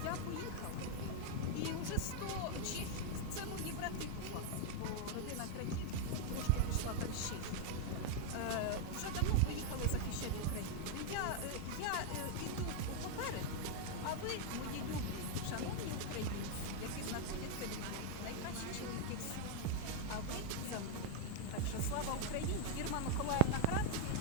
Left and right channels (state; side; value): different; both; correlation 0.01